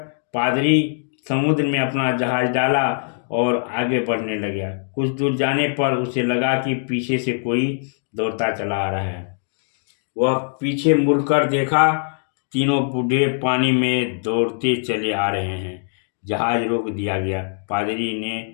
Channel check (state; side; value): silent; right; digital silence